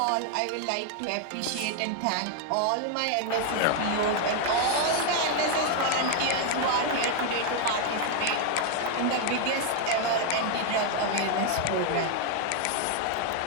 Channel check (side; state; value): both; different; correlation 0.00